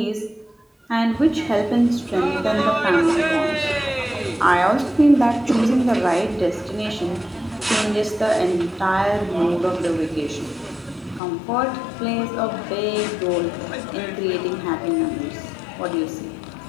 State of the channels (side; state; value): right; drops out; at 11.2 s